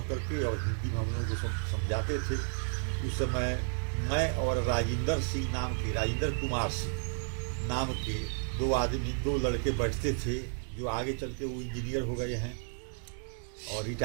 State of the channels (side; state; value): left; silent; 56 dB below the other